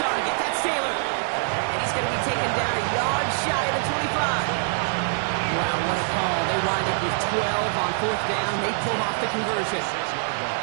That's Taylor. And he's going to be taken down a yard shy of the 25. Wow, what a call. They wind up with 12 on 4th down. They pull off the conversion.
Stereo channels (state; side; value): silent; left; digital silence